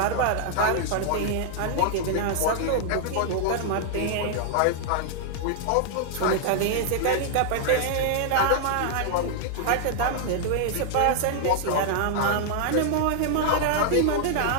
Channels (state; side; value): different; both; correlation -0.01